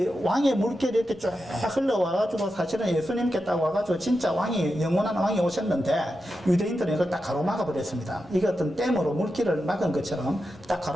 왕의 물길이 이렇게 쭉 흘러와가지고 사실은 예수님께 딱 와가지고 진짜 왕이, 영원한 왕이 오셨는데 유대인들은 이걸 딱 가로막아 버렸습니다. 이게 어떤 댐으로 물길을 막은 것처럼 딱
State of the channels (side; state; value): both; normal; correlation 0.89